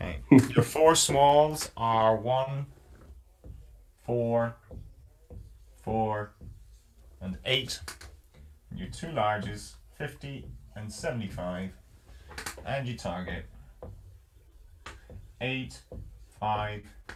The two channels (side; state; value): both; identical; correlation 1.00